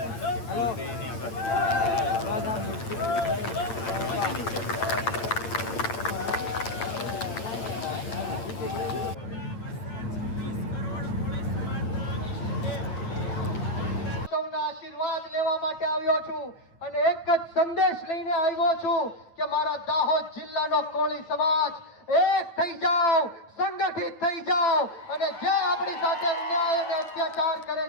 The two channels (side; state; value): right; late; 9.1 ms